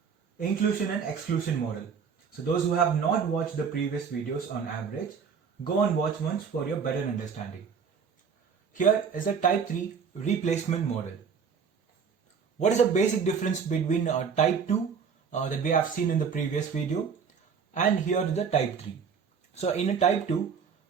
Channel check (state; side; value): quieter; left; 6.3 dB